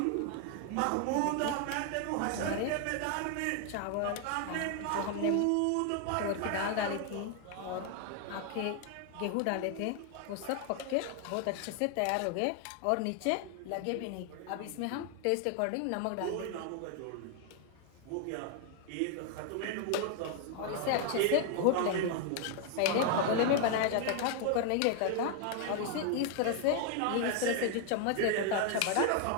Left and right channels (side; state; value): both; different; correlation 0.00